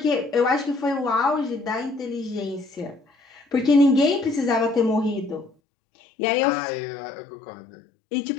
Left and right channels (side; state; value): right; drops out; at 5.5 s